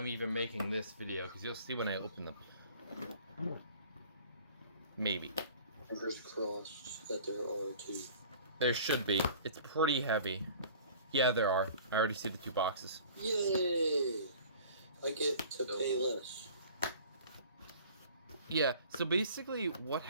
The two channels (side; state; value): both; inverted; correlation -0.48